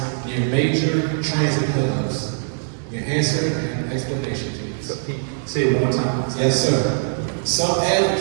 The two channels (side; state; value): left; silent; digital silence